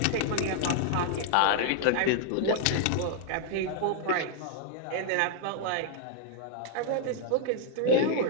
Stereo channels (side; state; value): both; different; correlation 0.00